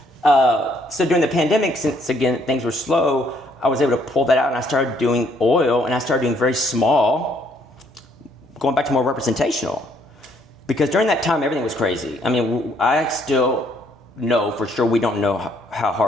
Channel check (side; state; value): both; normal; correlation 0.67